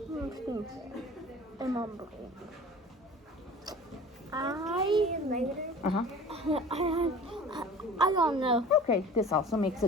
Remembering. I don't know. Okay, this also makes a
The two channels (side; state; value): both; normal; correlation 0.42